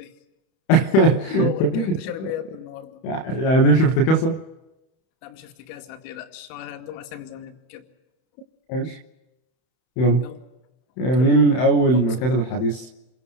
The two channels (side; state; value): right; late; 31 ms